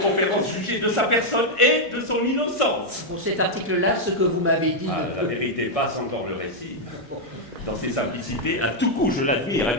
juger de sa personne et de son innocence. Pour cet article-là, ce que vous m'avez dit... La vérité passe encore le récit. Dans ses simplicités, à tout coup je l'admire, et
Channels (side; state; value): both; normal; correlation -0.01